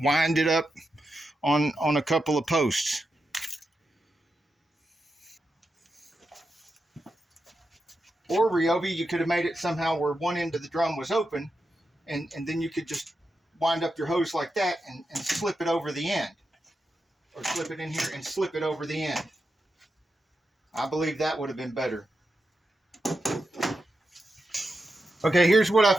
wind it up on a couple of posts. Or Ryobi, you could have made it somehow where one end of the drum was open, and then you could just wind up your hose like that and slip it over the end. Or slip it in here and slip it over the end. I believe that would have been better. Okay, here's what I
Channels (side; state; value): both; normal; correlation 0.88